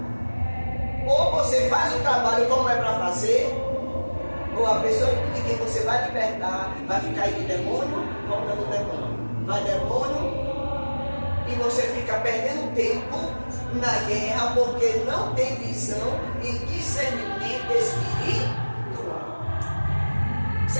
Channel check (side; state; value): both; inverted; correlation -1.00